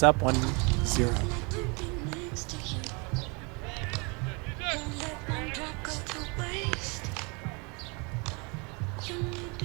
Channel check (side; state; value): left; quieter; 31.1 dB